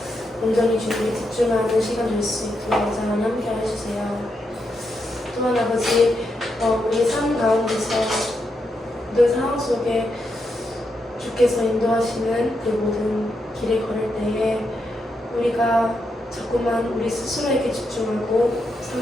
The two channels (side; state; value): both; normal; correlation 0.83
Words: 온전히 주님에 집중하는 시간 될 수 있도록 하나님 함께 해주세요. 또한 아버지, 우리 삶 가운데서 모든 상황 속에 주께서 인도하시는 그 모든 길을 걸을 때에 우리가 자꾸만 우리 스스로에게 집중하고